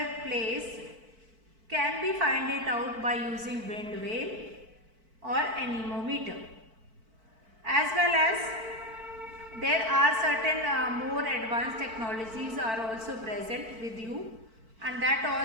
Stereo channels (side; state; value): left; late; 4.5 ms